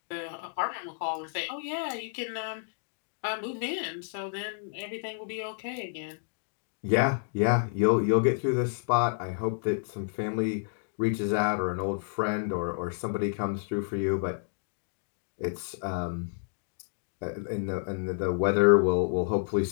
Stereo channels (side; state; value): right; silent; digital silence